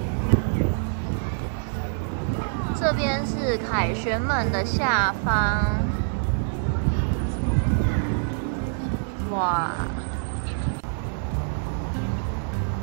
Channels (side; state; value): left; silent; 61 dB below the other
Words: 这边是凯旋门的下方，哇！